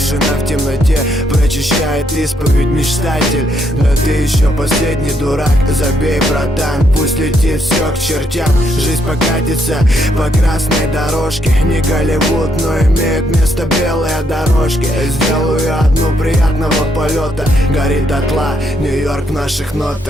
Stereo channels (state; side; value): normal; both; correlation 0.75